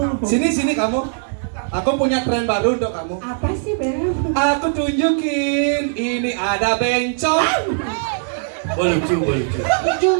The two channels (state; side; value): silent; left; 64 dB below the other